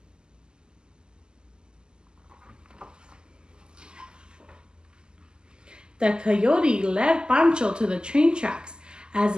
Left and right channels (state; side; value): late; left; 0.047 ms